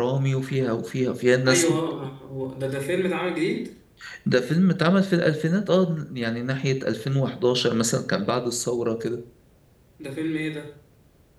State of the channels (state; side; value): identical; both; correlation 1.00